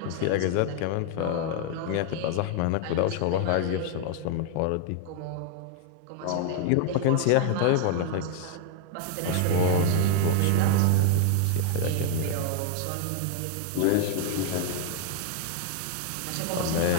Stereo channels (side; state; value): both; different; correlation 0.00